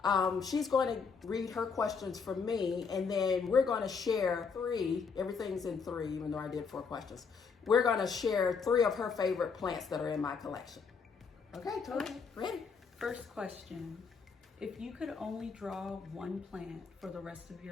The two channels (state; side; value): quieter; right; 5.5 dB